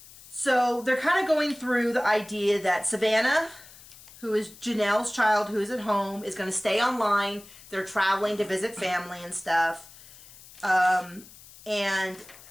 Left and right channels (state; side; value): noise; left; hiss, 20 dB below the sound